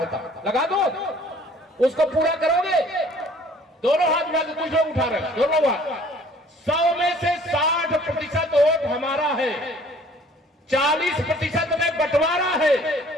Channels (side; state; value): both; normal; correlation 0.54